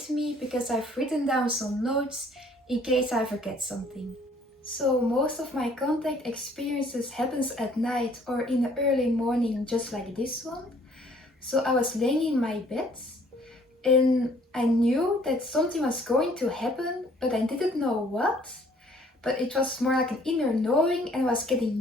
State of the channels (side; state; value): both; normal; correlation 0.59